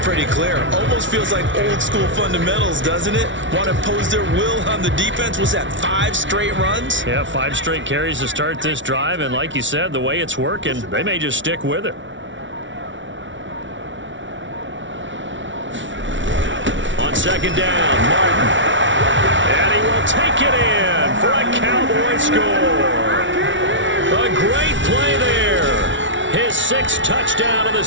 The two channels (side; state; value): left; late; 0.55 ms